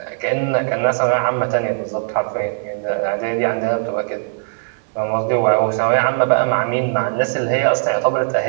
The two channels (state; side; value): silent; left; digital silence